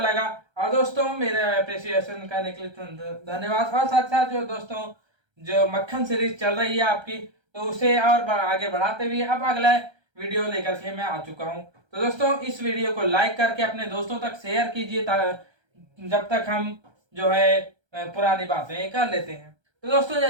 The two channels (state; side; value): late; left; 1.3 ms